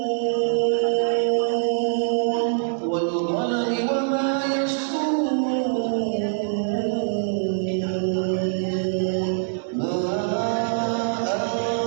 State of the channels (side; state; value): left; silent; digital silence